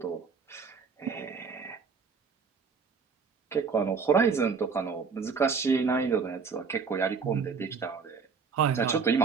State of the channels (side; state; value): left; quieter; 5.5 dB